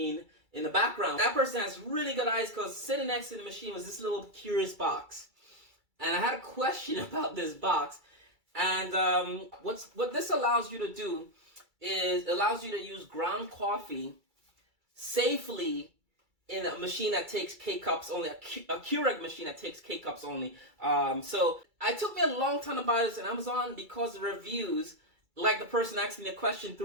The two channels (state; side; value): late; left; 2.3 ms